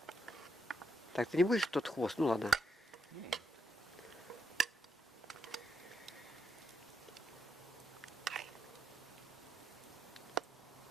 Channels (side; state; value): both; normal; correlation 0.80